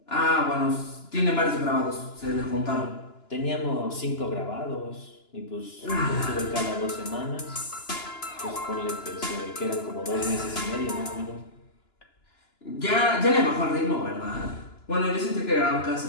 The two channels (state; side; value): late; right; 2.9 ms